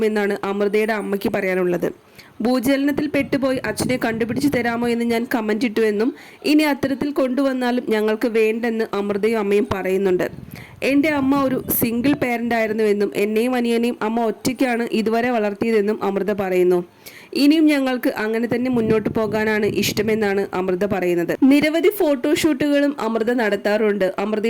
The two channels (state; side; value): identical; both; correlation 1.00